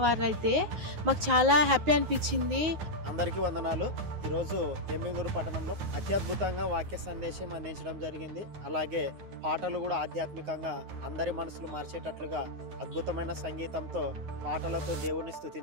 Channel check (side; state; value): left; late; 9.5 ms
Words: అయితే మాకు చాలా హ్యాపీ అనిపించింది. అందరికీ వందనాలు. ఈరోజు ఎమ్మిగనూరు పట్టణంలో అత్యద్భుతంగా వాక్య సందేశం అందించడం జరిగింది. అలాగే పాటలు కూడా ఆధ్యాత్మికంగా అందరి మనసులు మార్చేటట్లుగా అద్భుతమైన సంగీతంతో పాటలతో దేవుణ్ణి